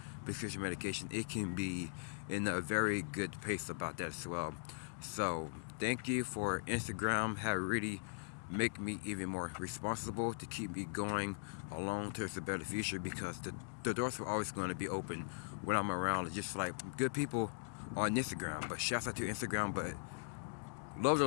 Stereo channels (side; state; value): right; silent; digital silence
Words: prescription medication, it can be in a very good pace about that as well. So thank you for Instagram. Have really make me even more responsible to keep me going along towards a better future, because the doors are always going to be open when I'm around. Just like good people on Instagram, but shouts out to Instagram, but love